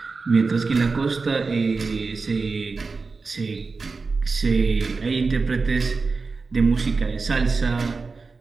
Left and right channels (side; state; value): left; quieter; 4.3 dB